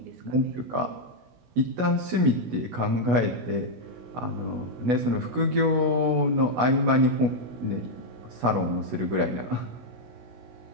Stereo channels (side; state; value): left; late; 16 ms